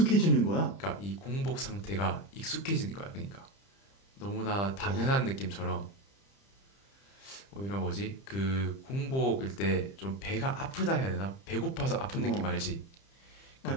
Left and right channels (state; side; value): late; right; 30 ms